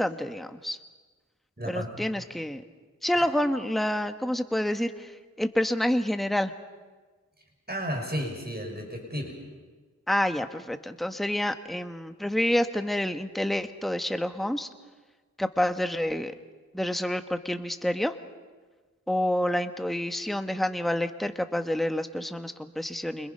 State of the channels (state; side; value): normal; both; correlation 0.93